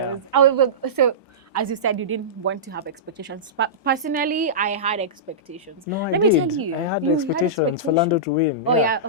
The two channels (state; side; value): normal; both; correlation -0.18